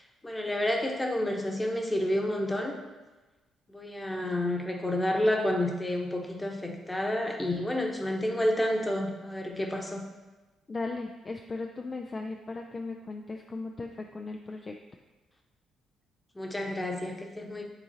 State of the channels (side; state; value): both; normal; correlation 0.90